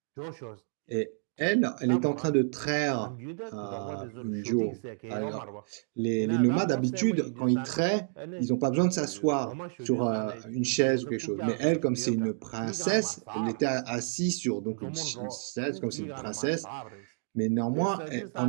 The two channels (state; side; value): silent; left; digital silence